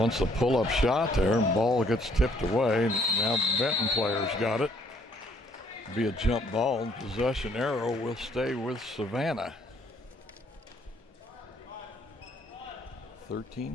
a pull-up shot there, and ball gets tipped away. Now Benton players got it. Be a jump ball. Possession arrow will stay with Savannah.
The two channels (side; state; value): both; normal; correlation 0.64